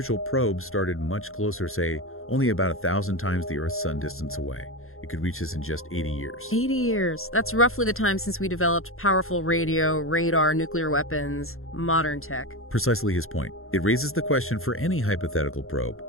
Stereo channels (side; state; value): right; late; 0.61 ms